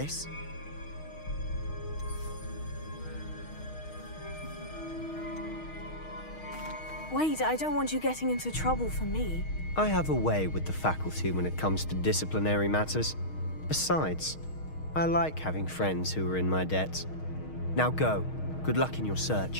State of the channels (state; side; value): late; right; 6.4 ms